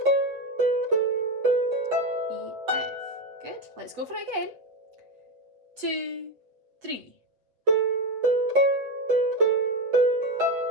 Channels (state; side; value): late; left; 7.9 ms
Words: E, F. Good. Let's go for it again. 2, 3.